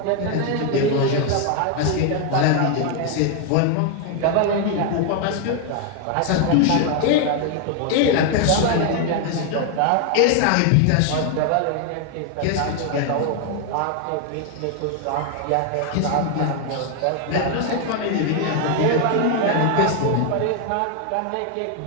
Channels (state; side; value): different; both; correlation 0.01